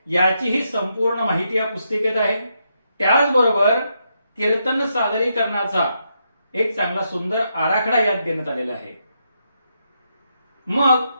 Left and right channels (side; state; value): both; inverted; correlation -0.81